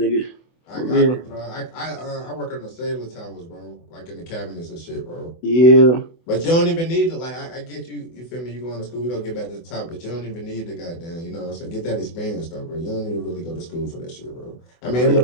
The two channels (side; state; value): right; late; 24 ms